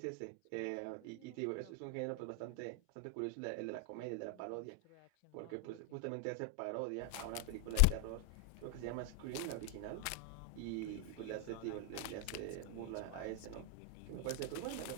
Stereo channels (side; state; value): both; different; correlation 0.00